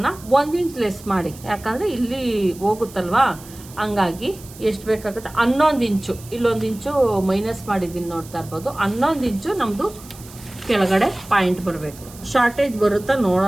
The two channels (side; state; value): right; noise; hiss, 19 dB below the sound